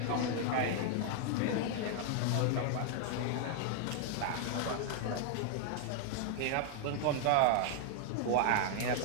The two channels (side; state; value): both; different; correlation 0.00